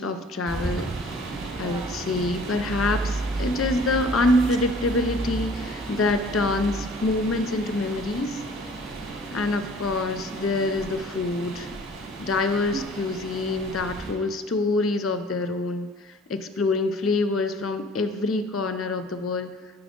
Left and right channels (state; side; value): normal; both; correlation 0.51